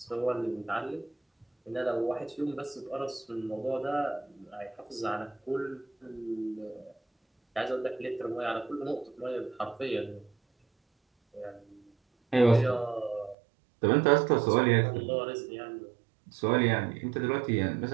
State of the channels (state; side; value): drops out; left; at 13.4 s